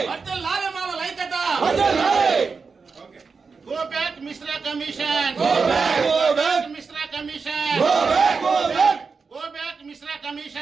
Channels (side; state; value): left; quieter; 4.9 dB